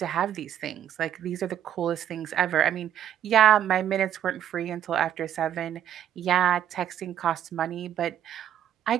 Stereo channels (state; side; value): quieter; left; 10.4 dB